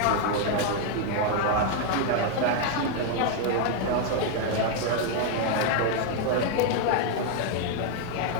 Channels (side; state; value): both; different; correlation 0.00